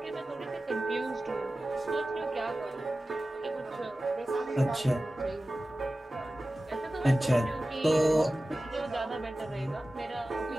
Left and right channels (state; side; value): normal; both; correlation 0.95